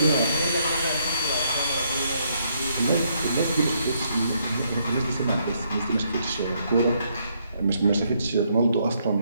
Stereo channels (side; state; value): both; inverted; correlation -0.73